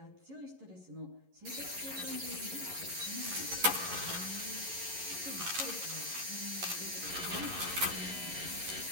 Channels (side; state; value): left; late; 11 ms